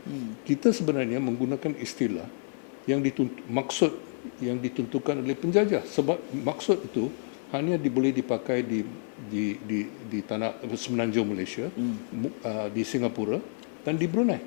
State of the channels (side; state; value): right; silent; 57 dB below the other